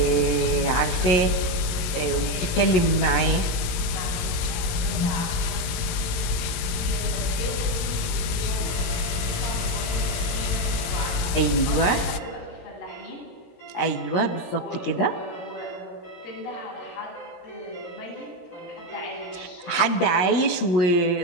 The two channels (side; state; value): right; late; 18 ms